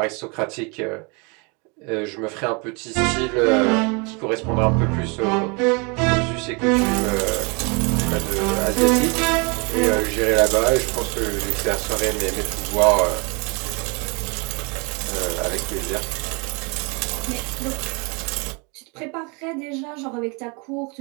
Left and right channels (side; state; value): left; quieter; 31.3 dB